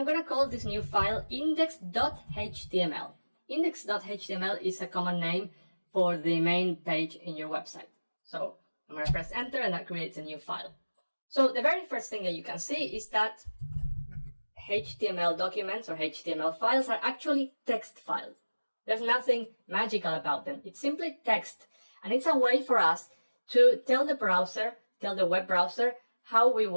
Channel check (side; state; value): both; inverted; correlation -1.00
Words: going to call this new file index.html. Index.html is a common name for the main page in your website. So I'm going to press Enter, and that creates a new file. So the very first thing that you can see is that HTML documents or HTML files are actually text files. There's nothing magical about them. It's simply text. And it's a way for us to tell the web browser how we